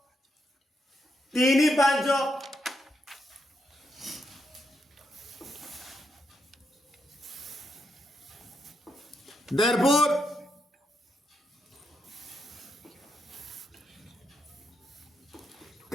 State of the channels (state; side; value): normal; both; correlation 0.81